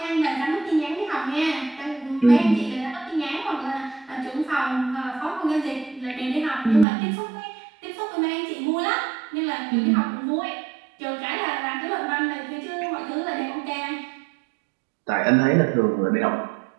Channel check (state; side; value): drops out; left; at 6.9 s